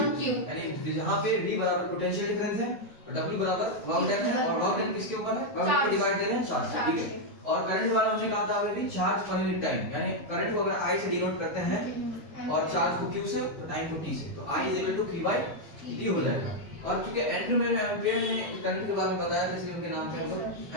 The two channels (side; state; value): both; normal; correlation 0.00